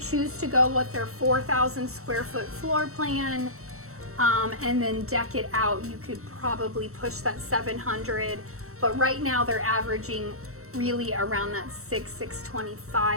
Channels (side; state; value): left; late; 0.64 ms